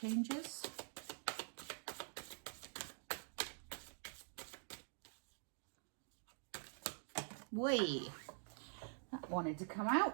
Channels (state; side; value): silent; left; digital silence